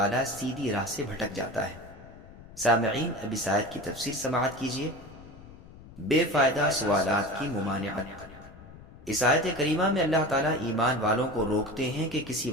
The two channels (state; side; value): noise; left; rumble, 19 dB below the sound